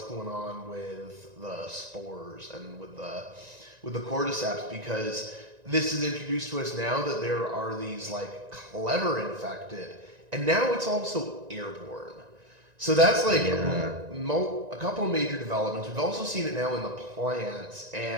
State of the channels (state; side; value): late; left; 1.9 ms